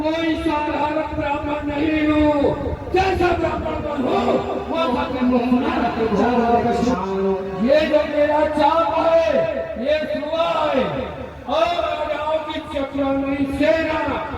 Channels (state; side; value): identical; both; correlation 1.00